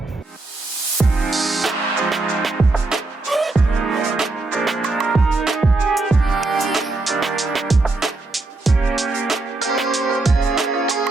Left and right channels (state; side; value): quieter; left; 3.1 dB